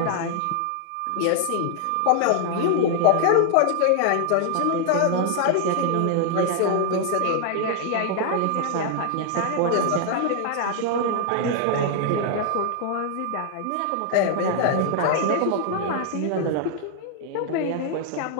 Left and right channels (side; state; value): both; different; correlation 0.00